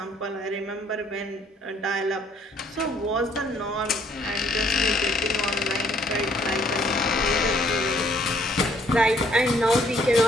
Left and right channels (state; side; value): normal; both; correlation 0.65